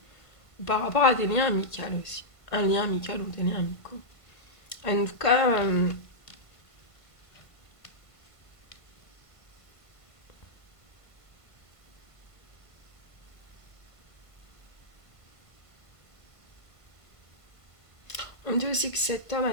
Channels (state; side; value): late; right; 1.5 ms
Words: ou par rapport à des liens amicaux aussi. Un lien amical ou des liens amicaux. En tout cas, on dit aussi que cet homme